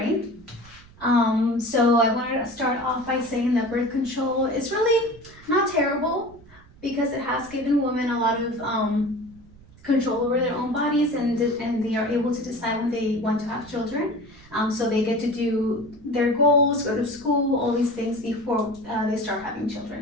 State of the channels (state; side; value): noise; right; rumble, 24 dB below the sound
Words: So I wanted to start off by saying that birth control is really not terrible because it has given women a lot of control over their own bodies, and they are able to decide when they want to have children. So they get to do their goals, go to school, all these things before they start having